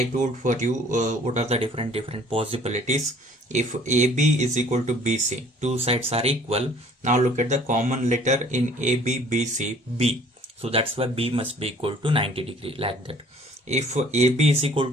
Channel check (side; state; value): both; normal; correlation 0.55